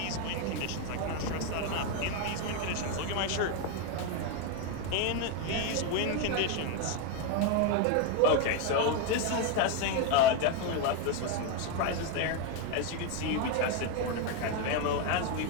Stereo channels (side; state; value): both; different; correlation 0.02